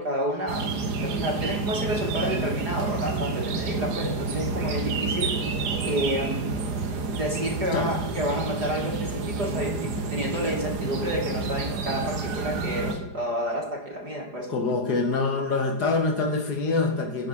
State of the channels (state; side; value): late; left; 4.9 ms